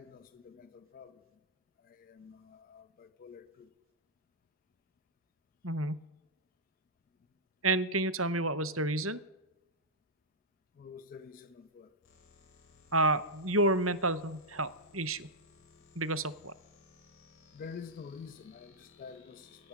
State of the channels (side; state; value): both; normal; correlation -0.06